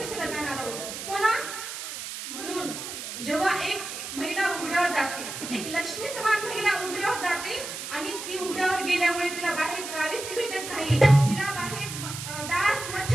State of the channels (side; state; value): right; noise; hiss, 8 dB below the sound